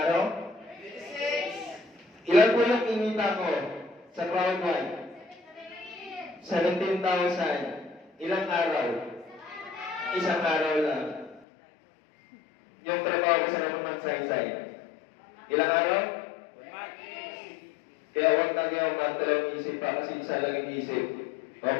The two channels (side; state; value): right; drops out; at 11.5 s